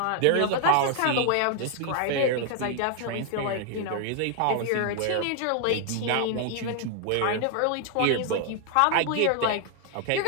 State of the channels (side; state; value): both; different; correlation 0.00